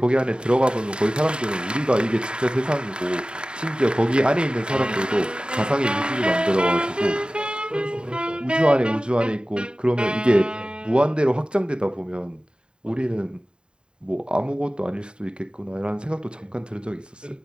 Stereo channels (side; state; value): left; late; 0.051 ms